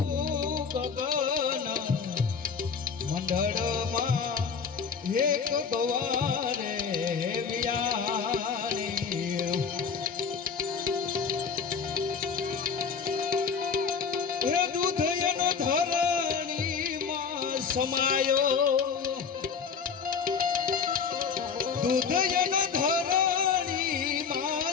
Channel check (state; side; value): quieter; right; 6.0 dB